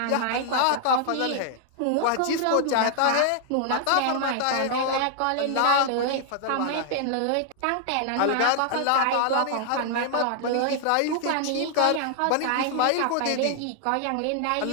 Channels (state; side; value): different; both; correlation 0.00